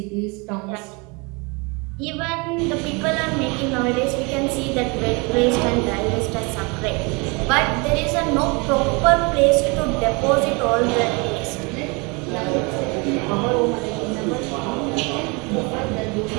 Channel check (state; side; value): quieter; left; 29.2 dB